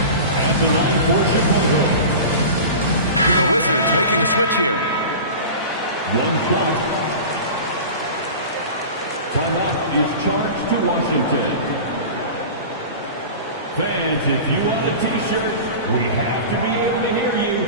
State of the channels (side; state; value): both; inverted; correlation -0.33